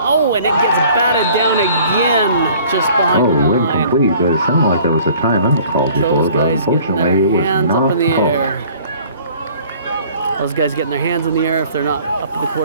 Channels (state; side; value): inverted; both; correlation -0.52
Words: and it gets batted down again just behind the line. Incomplete, but it sounded like there was a timeout called before, Those but guys getting unfortunately it their was hands up not in the called. air. Those guys getting their hands in the air if they're not up to the